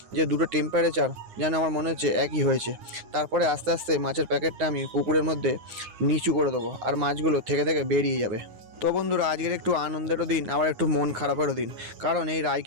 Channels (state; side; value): late; left; 9.6 ms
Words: যে দুটো টেম্পারেচার যেন আমার মনে হচ্ছে একই হয়েছে। তারপরে আস্তে আস্তে মাছের প্যাকেটটা আমি পুকুরের মধ্যে নিচু করে দেবো আর মাছগুলো থেকে থেকে বেরিয়ে যাবে। তো বন্ধুরা আজকের একটু আনন্দেরও দিন, আবার একটু মন খারাপেরও দিন। কারণ এই